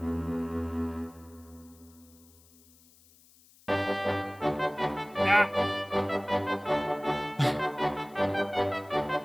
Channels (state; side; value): noise; left; hiss, 27 dB below the sound